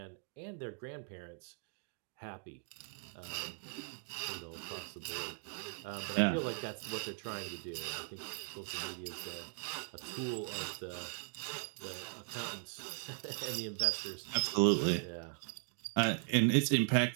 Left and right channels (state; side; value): silent; left; 52 dB below the other